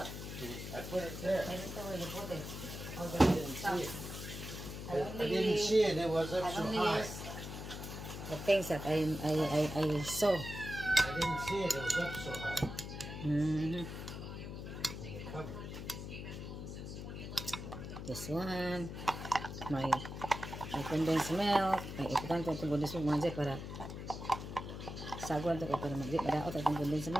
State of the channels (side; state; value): left; noise; hum, 8 dB below the sound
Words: I put it there. I didn't know where you put it. All I the didn't see it. I I didn't see it. It was up I so only high. use the things that I saw. I didn't see it. It was up so high Mm-hmm. in the cupboard. This one, my condensed milk, may ipukan ko itong condensed milk mga dyan para sagwan ito para madaot itong condensed